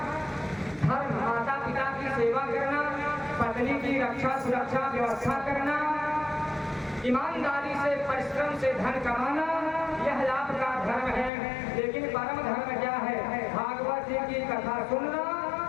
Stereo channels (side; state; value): right; drops out; at 11.3 s